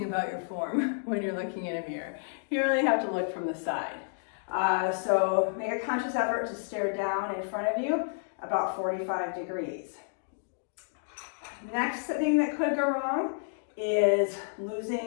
about your form when you're looking in a mirror. You really have to look from the side. So make a conscious effort to stare down in front of you about 45 degrees. Next thing that could go wrong is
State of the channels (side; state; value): right; silent; digital silence